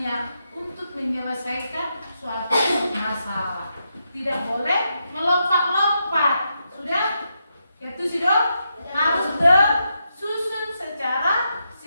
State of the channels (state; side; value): inverted; both; correlation -0.83